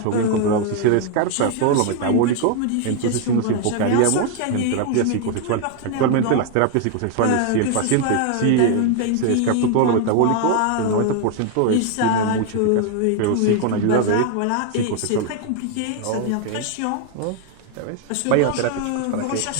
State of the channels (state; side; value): different; both; correlation 0.01